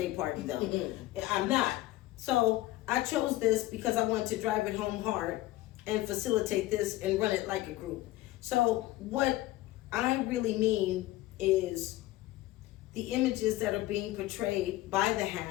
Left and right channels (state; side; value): quieter; right; 17.0 dB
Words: party, though. I'm not. So I chose this because I wanted to drive it home hard and facilitate this and run it like a group. So what I really mean is the images that are being portrayed by the